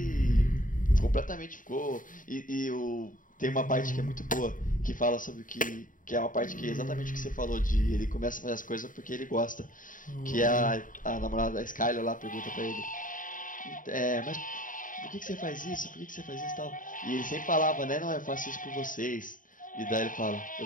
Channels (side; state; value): right; late; 0.39 ms